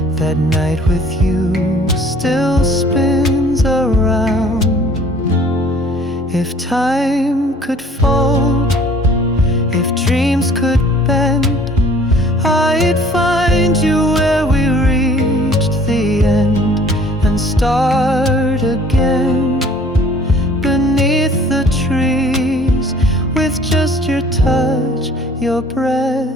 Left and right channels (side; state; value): both; normal; correlation 0.53